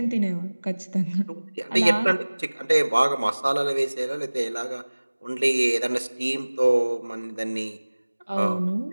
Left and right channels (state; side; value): inverted; both; correlation -1.00